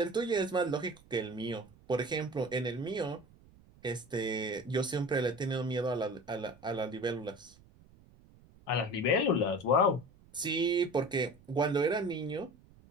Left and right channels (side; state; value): right; noise; rumble, 26 dB below the sound